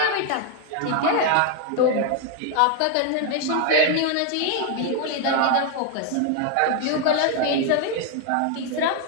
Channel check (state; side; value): different; both; correlation 0.01